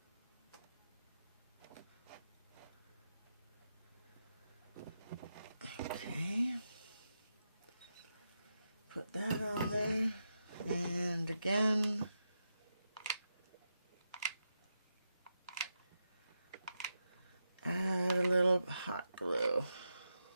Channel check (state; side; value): inverted; both; correlation -0.87